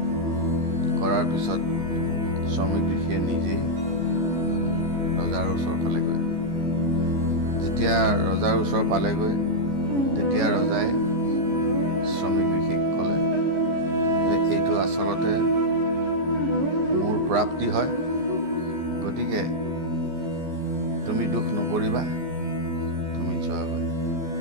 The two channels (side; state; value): left; late; 14 ms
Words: কৰাৰ পিছত শ্ৰমিক ঋষিয়ে নিজেই ৰজাৰ ওচৰ পালেগৈ। যেতিয়া ৰজাৰ ওচৰ পালেগৈ, তেতিয়া ৰজাই শ্ৰমিক ঋষিক ক'লে যে এইটো আচলতে মোৰ প্ৰাপ্তি হয়, গতিকে তুমি দুখ নকৰিবা, তুমি যোৱাগৈ।